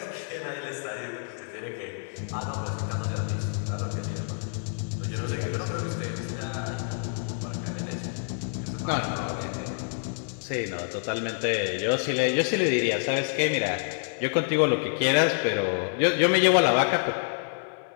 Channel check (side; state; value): right; silent; digital silence